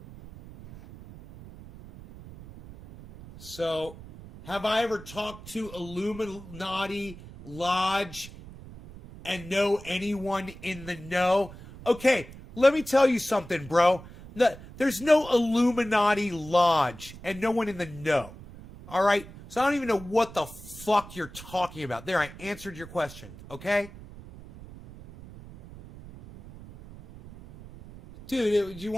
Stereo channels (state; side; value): noise; right; rumble, 16 dB below the sound